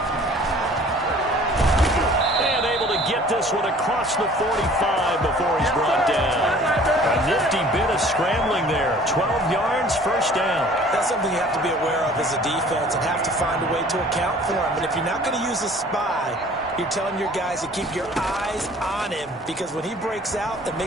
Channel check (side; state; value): both; normal; correlation 0.51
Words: And able to get this one across the 45 before he's brought down. A nifty bit of scrambling there. 12 yards, first down. That's something you have to be aware of as a defense and have to find a way to account for him. And if you're not going to use a spy, you're telling your guys to keep your eyes on him, because when he breaks out and